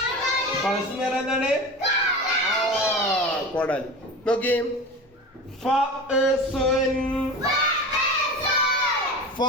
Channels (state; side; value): normal; both; correlation 0.31